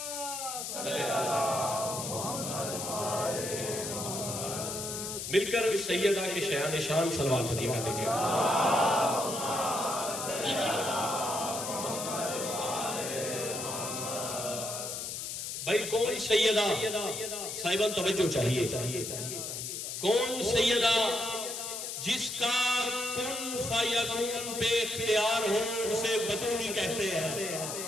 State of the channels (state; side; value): noise; left; hiss, 5 dB below the sound